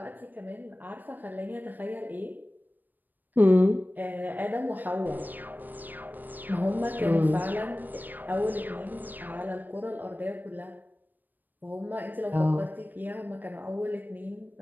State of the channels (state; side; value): late; left; 0.088 ms